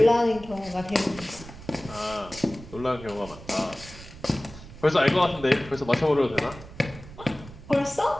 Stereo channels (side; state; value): right; noise; rumble, 16 dB below the sound